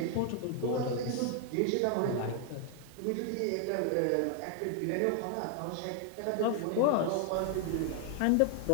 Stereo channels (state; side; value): different; both; correlation 0.00